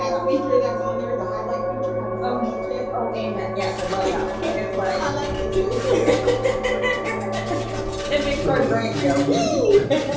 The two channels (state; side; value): identical; both; correlation 1.00